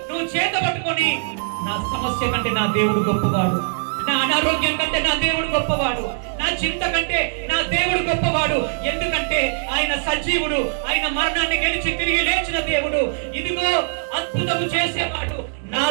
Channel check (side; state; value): left; silent; digital silence